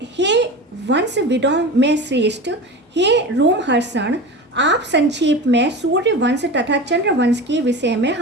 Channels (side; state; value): both; normal; correlation 0.30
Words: हे वंशविदों में श्रेष्ठ, हे रोमहर्षण, आप संक्षेप में सूर्य वंश तथा चंद्र वंश के विषय में